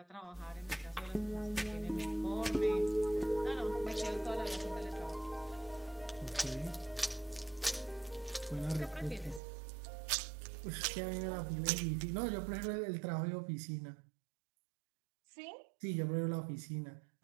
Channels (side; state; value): left; drops out; at 9.4 s